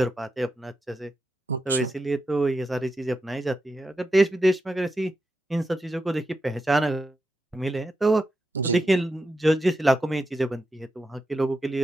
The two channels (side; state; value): both; normal; correlation 0.87